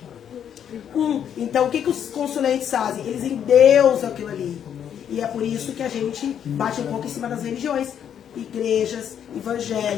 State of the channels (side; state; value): right; quieter; 9.0 dB